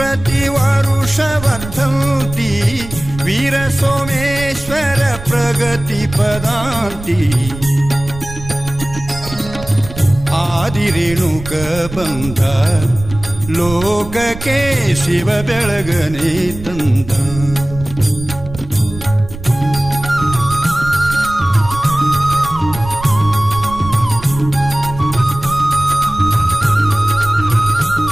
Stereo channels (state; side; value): noise; right; rumble, 12 dB below the sound